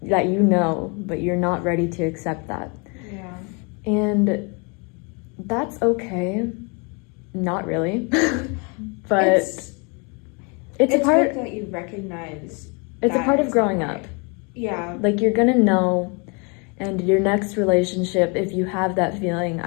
that you know, but you're not ready to accept that. yeah. And that's okay. Not really. But It's a part good that you recognize it's a that part of it's growing not up. right. Yeah. Like, you're gonna know, and your next relationship, if you have that feeling,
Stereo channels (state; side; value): quieter; right; 32.8 dB